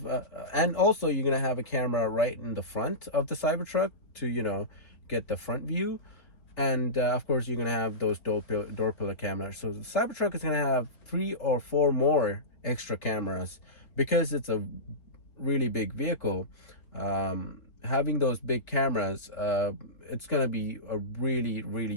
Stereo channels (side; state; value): right; late; 3.7 ms